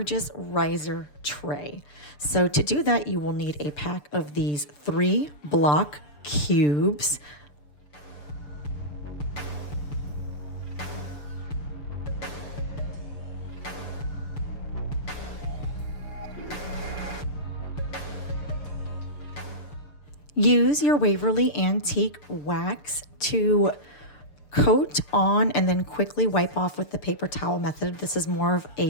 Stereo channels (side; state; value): right; late; 6.8 ms